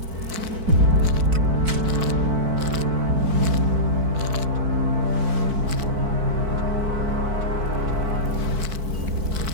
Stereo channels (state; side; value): late; left; 4.5 ms